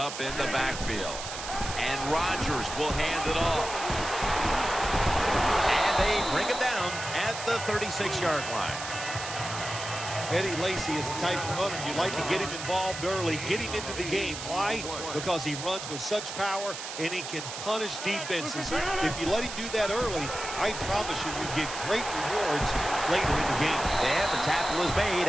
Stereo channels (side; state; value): right; noise; hiss, 8 dB below the sound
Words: in the backfield. And Rodgers will hand it off. And they bring him down at the 36-yard line. Eddie Lacy is the type of runner you like to get him involved early, get him into the game. Why? Because he runs with such power and he can punish defenses. If you let him do that early, I promise you get great rewards later in the game. And the tackle is made